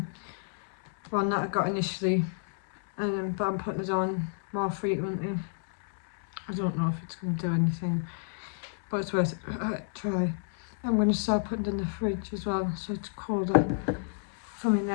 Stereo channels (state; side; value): silent; right; 58 dB below the other